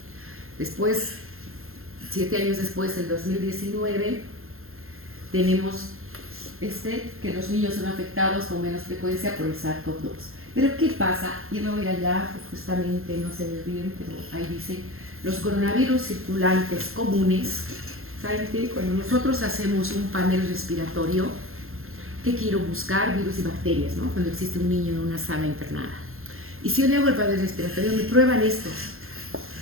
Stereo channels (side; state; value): left; late; 0.61 ms